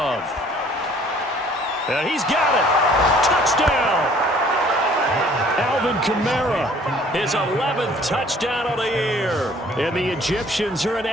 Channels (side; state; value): both; normal; correlation 0.56